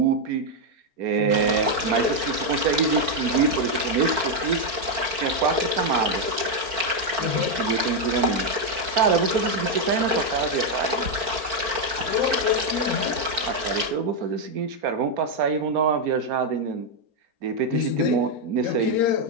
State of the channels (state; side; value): late; left; 4.5 ms